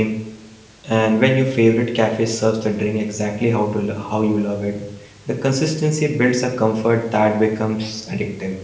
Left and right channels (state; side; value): identical; both; correlation 1.00